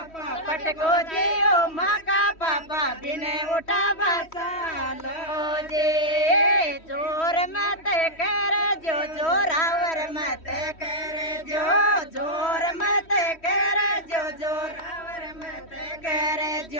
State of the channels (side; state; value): right; late; 3.1 ms